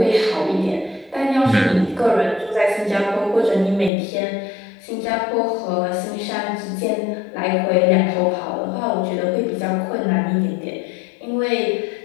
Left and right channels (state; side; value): drops out; right; at 3.9 s